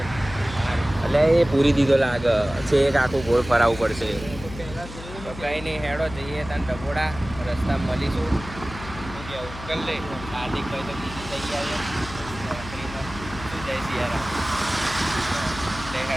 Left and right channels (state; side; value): noise; left; hum, 13 dB below the sound